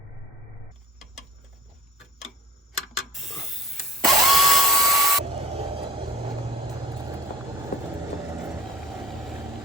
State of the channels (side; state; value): both; normal; correlation 0.39